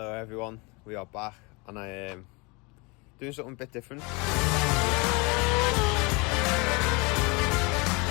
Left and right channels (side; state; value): right; quieter; 28.2 dB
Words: everyone, we are back and I am doing something a bit different.